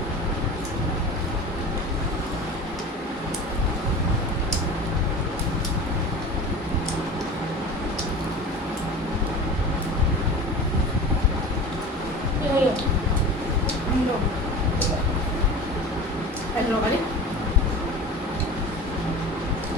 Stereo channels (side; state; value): both; normal; correlation 0.34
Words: Anh lo cái đi.